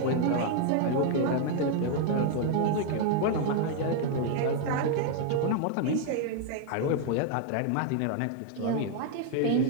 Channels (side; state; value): both; different; correlation 0.00